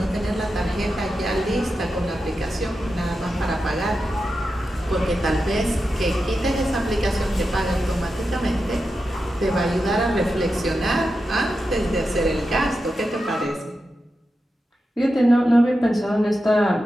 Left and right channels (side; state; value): both; normal; correlation 0.90